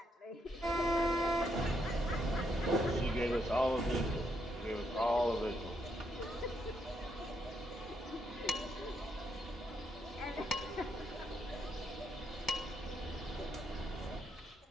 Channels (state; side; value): normal; both; correlation 0.76